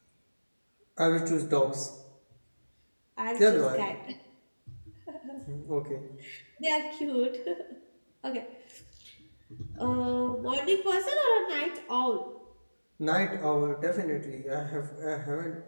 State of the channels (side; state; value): both; inverted; correlation -1.00